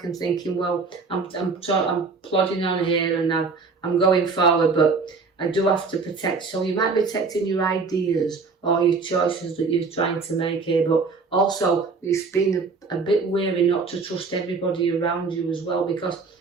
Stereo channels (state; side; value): quieter; left; 4.5 dB